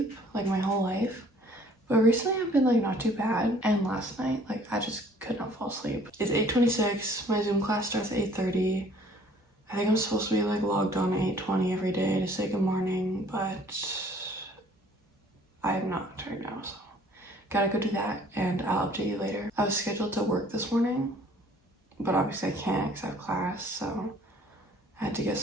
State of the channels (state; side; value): normal; both; correlation 0.56